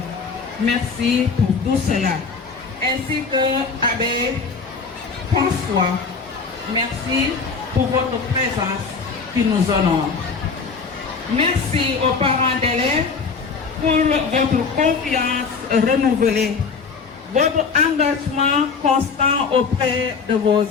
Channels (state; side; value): quieter; right; 5.1 dB